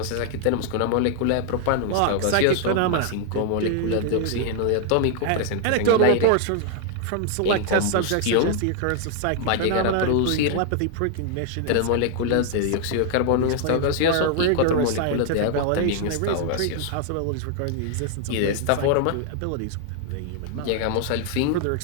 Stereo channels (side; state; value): both; different; correlation 0.00